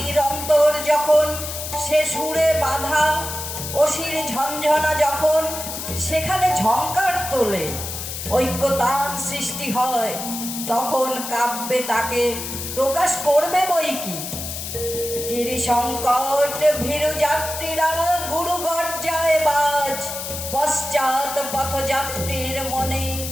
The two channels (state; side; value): noise; left; hiss, 7 dB below the sound